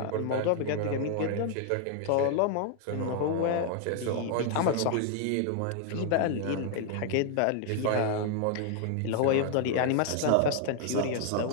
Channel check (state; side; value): different; both; correlation 0.00